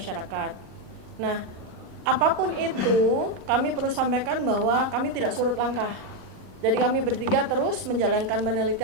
Nah, apapun itu, kami perlu sampaikan bahwa kami tidak surut langkah. Jadi kami bertiga terus menjalankan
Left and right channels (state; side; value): late; left; 38 ms